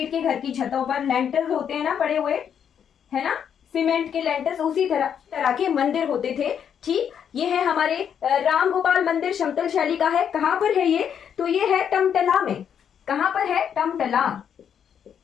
के घर की छतों पर लेंटर्स होते हैं ना पड़े हुए, है ना, सीमेंट के लेंटर्स, उसी तरह के मंदिर होते थे। ठीक, ये है हमारे राम गोपाल मंदिर, समतल शैली का है। कहां पर है ये? तो ये है टमटला में। कहां पर है?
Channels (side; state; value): right; quieter; 8.3 dB